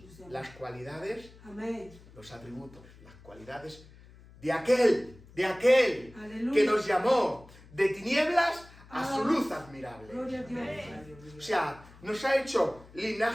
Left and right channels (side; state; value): left; noise; hum, 22 dB below the sound